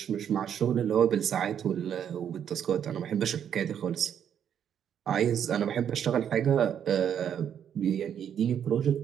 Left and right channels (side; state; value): left; quieter; 8.9 dB